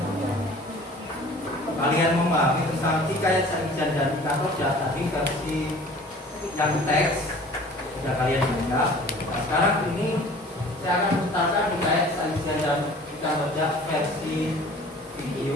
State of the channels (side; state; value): both; normal; correlation 0.47